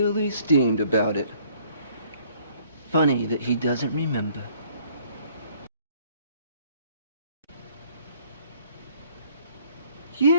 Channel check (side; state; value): both; inverted; correlation -0.61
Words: steamed about it. Funny that he doesn't remember.